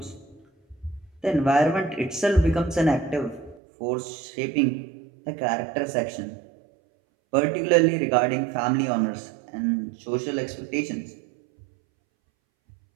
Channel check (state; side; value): drops out; left; at 3.6 s